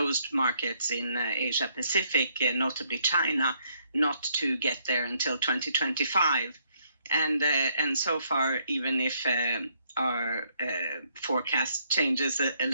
markets in Asia Pacific, notably China, not to get there until 2025. And so far, even if our forecast changes a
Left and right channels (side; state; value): both; inverted; correlation -0.70